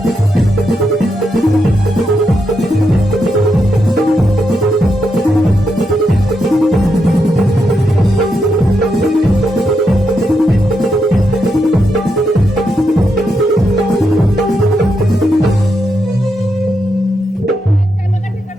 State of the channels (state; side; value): normal; both; correlation 0.83